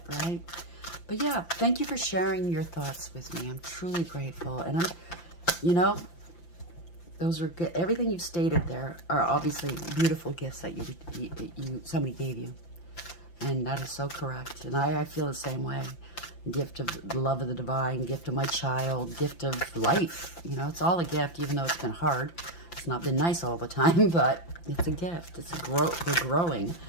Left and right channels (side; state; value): right; late; 5.8 ms